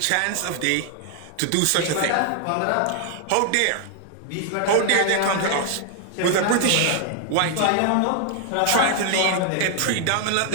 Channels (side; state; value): both; different; correlation 0.00